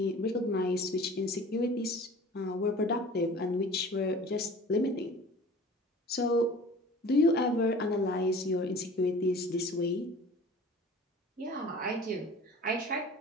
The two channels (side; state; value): both; normal; correlation 0.43